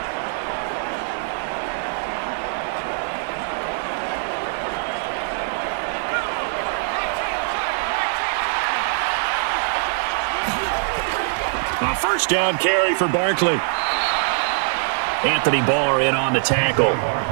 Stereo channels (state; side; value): silent; left; digital silence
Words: A first down carry for Barkley. Anthony Barr in on the tackle.